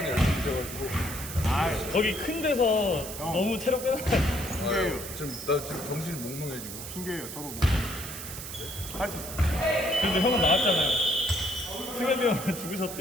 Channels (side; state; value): right; noise; hiss, 9 dB below the sound